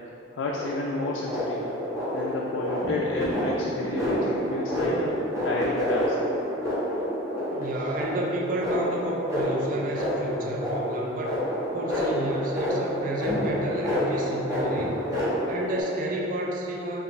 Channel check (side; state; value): both; normal; correlation 0.35